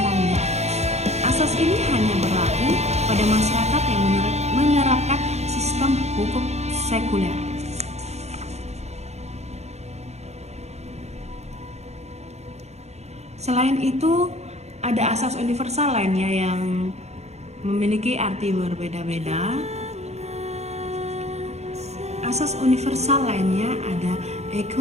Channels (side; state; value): left; late; 0.32 ms